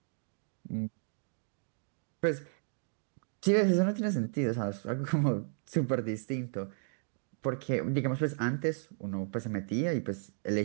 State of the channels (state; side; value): silent; left; digital silence